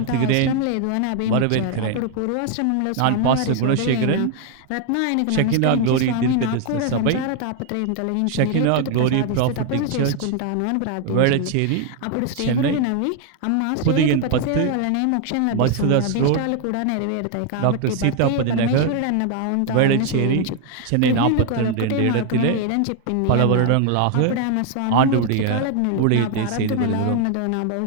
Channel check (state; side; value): different; both; correlation 0.01